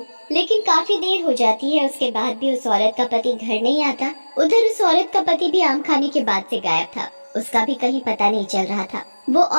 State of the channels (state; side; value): inverted; both; correlation -1.00